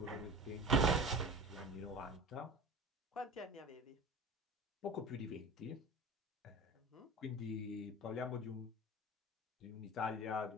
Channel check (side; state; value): both; normal; correlation 0.36